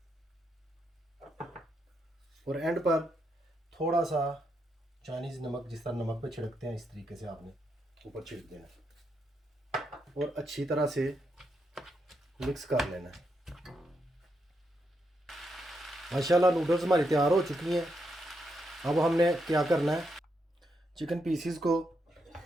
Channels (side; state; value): both; normal; correlation 0.81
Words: और एंड पर थोड़ा सा चाइनीज़ नमक, जिस तरह नमक पे छिड़कते हैं इस तरीके से आपने ऊपर छिड़क देना और अच्छी तरह से मिक्स कर लेना है। माशाल्लाह नूडल्स हमारी तैयार हो चुकी हैं। अब हमने क्या करना है, चिकन पीसीस को